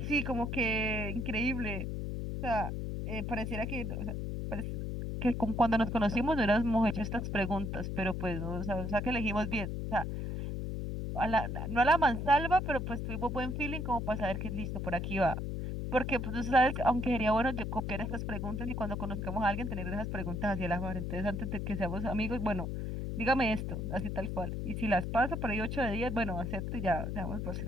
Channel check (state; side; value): noise; left; hum, 3 dB below the sound